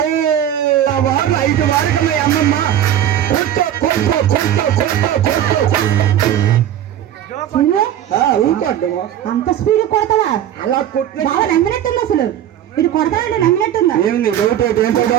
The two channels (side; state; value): left; quieter; 10.9 dB